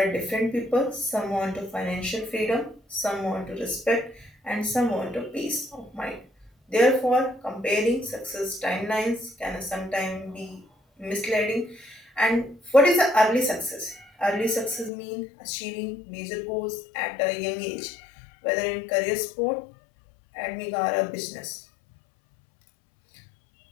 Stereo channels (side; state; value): right; drops out; at 14.9 s